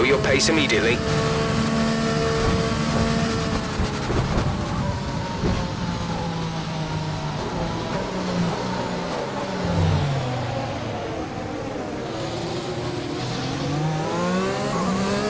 your pace immediately.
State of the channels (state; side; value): identical; both; correlation 1.00